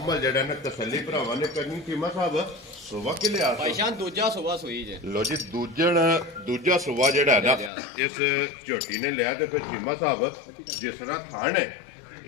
ਜਿਹੜਾ ਨਾ ਤਸੱਲੀ ਭਰਾਵਾਂ ਨੇ ਕਰਨੀ ਕੀਮਾ ਸਾਹਿਬ ਸੁਬਾ ਕਿ ਲਿਆ ਭਾਈਸ਼ਾਨ ਦੂਜਾ ਸੁਬਾ ਸੋਈ ਜੇ ਲੋ ਜੀ ਦੂਜਾ ਸੁਬਾ ਜਿਹੜਾ ਨਾ ਇਸ ਝੋਟੀ ਨੇ ਲਿਆ ਤੇ ਫਿਰ ਕੀਮਾ ਸਾਹਿਬ ਜਿਸ ਤਰ੍ਹਾਂ ਥਾਣ ਹੈ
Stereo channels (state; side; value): drops out; right; at 7.7 s